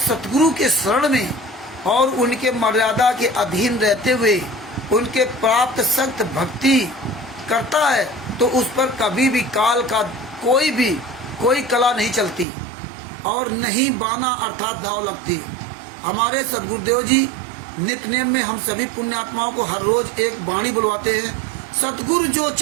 के शरण में और उनके मर्यादा के अधीन रहते हुए उनके प्राप्त सख्त भक्ति करता है तो उस पर कभी भी काल का कोई कला नहीं चलती और नहीं बाना अर्थात दाव लगती। हमारे सदगुरुदेव जी नित्य नेम में हम सभी पुण्यात्माओं को हर रोज एक वाणी बुलवाते हैं, सतगुरु जो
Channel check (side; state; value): left; drops out; at 12.5 s